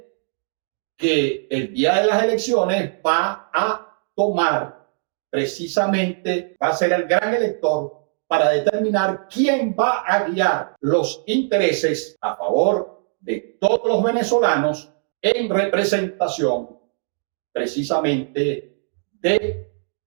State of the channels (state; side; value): silent; left; 65 dB below the other